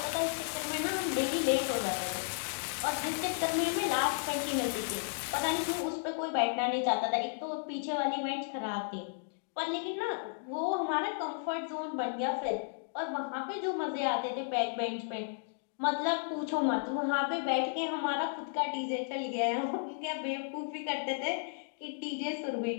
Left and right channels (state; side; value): silent; right; digital silence